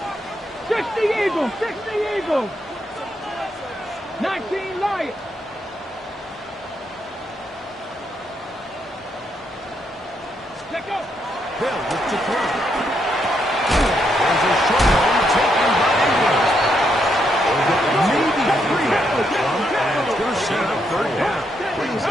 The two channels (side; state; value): both; normal; correlation 0.77